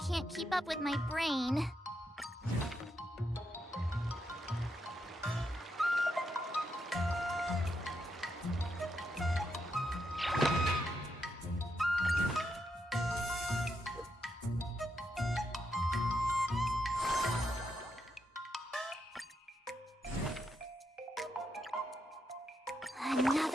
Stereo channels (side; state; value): both; normal; correlation 0.82